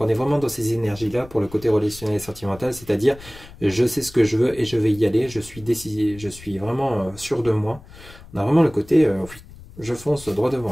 est vraiment dans ces énergies-là pour le côté relationnel et sentimental. C'est-à-dire, je sais ce que je veux et je vais y aller. Je suis décidé, je suis vraiment sûr de moi. On a vraiment le côté, je fonce droit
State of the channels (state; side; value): noise; left; rumble, 19 dB below the sound